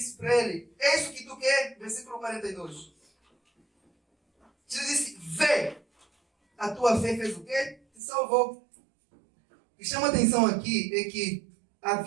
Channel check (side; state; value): left; drops out; at 8.0 s